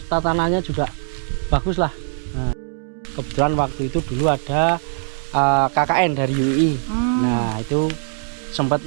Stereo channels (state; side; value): silent; left; 65 dB below the other